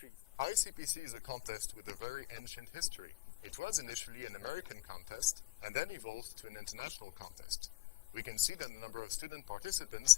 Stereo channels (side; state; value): right; quieter; 16.5 dB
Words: ICPC is a contest with a very ancient history. It was initially an American contest and then evolved to an international contest. We can see that the number of student participants